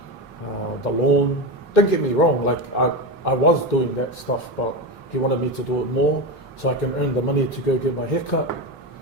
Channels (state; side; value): normal; both; correlation 0.18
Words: the lawn. Don't get me wrong, like I was doing that stuff, but he wanted me to do it more so I can earn the money to go get my hair cut.